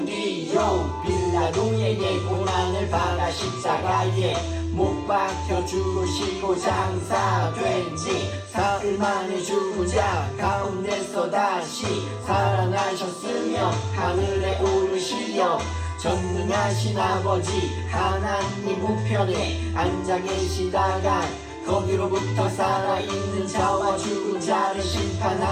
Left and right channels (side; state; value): both; identical; correlation 1.00